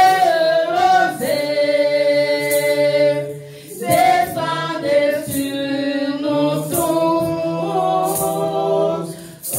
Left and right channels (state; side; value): identical; both; correlation 1.00